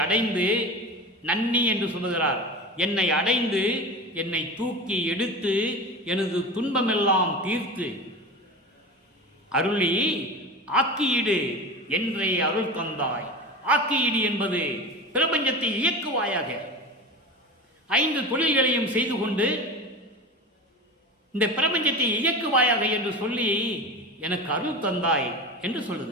அடைந்து, நன்னி என்று சொல்லுகிறார், என்னை அடைந்து என்னை தூக்கி எடுத்து எனது துன்பமெல்லாம் தீர்த்து அருளி ஆக்கியிடு என்றே அருள் தந்தாய். ஆக்கியிடு என்பது பிரபஞ்சத்தை இயக்குவாயாக, 5 தொழில்களையும் செய்து கொண்டு இந்த பிரபஞ்சத்தை இயக்குவாயாக என்று சொல்லி எனக்கு அருள் தந்தாய் என்று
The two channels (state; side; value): normal; both; correlation 0.29